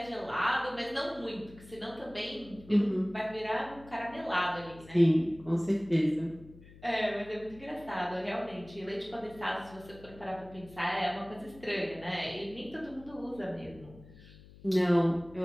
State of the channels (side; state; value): left; noise; hum, 20 dB below the sound